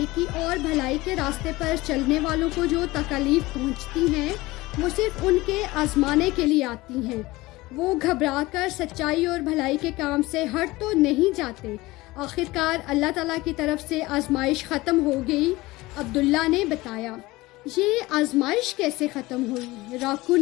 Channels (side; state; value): right; quieter; 20.1 dB